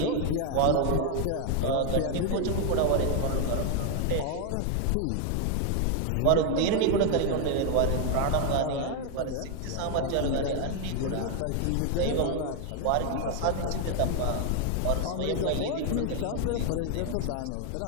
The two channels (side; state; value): both; different; correlation 0.01